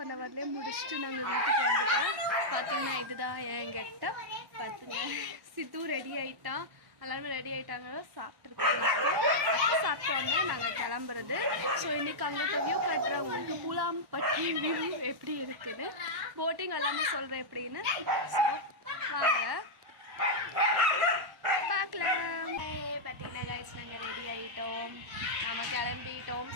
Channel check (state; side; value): late; left; 1.1 ms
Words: ஹவர்லேயே முடிச்சுட்டு நாங்கள் வீட்டுக்கு வந்துட்டோம். பார்த்திங்கன்னா இதுதான் என் கெட்டப். பார்த்துங்க, சித்து ரெடி ஆகிட்டான், எல்லாருமே ரெடி ஆகிட்டாங்க. சாப்பிட்ருக்கோம். அப்போ சாப்பிட்டோன்னே நாங்கள் கிளம்புறது. ஸோ இன்றைக்கி அங்கே வியூ காட்டுறேன் உங்களுக்கு. பூலாம்பட்டி வியூ எப்படி இருக்குதுன்னு, போட்டிங் எல்லாமே சொல்கிறேன் எப்படின்னு. ஸோ வாங்க பார்க்கலாம். பார்த்தீங்கன்னா கைஸ் நாங்கள் ரெடி ஆகிட்டோம், நம்ம கிளம்பிட்டோம்,